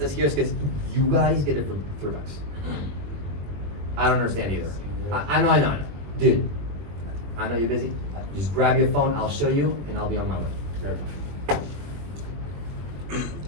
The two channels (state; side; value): late; left; 21 ms